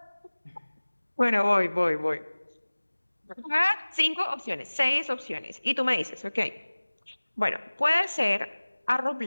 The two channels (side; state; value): both; inverted; correlation -1.00